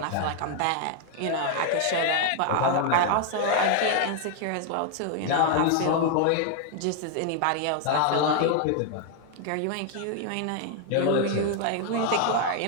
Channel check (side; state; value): both; different; correlation 0.00